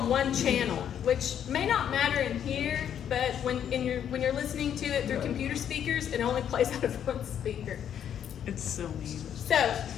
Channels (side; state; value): right; quieter; 9.3 dB